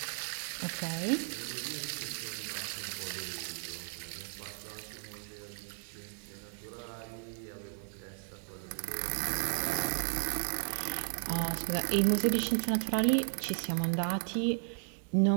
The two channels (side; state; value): left; silent; 54 dB below the other